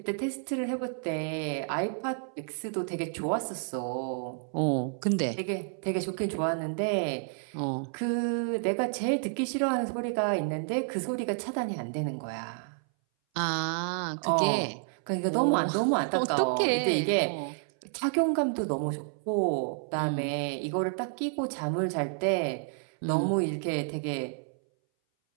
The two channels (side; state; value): left; silent; 58 dB below the other